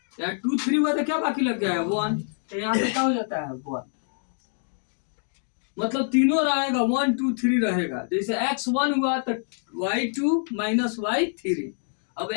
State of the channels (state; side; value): silent; right; 61 dB below the other